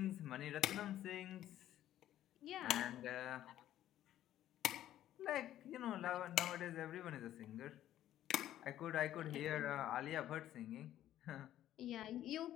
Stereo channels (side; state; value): right; quieter; 12.5 dB